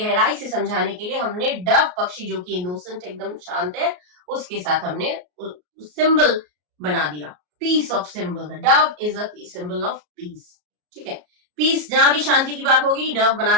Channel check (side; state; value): left; late; 33 ms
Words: से समझाने के लिए हमने डव पक्षी जो कि इनोसेंट एकदम शांत है, उसके साथ हमने सिंबल बना दिया, peace of symbol. Dove is a symbol of peace. ठीक है, पीस, जहां भी शांति की बात होगी डव बना